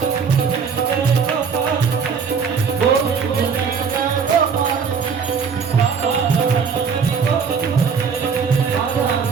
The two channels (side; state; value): left; quieter; 6.0 dB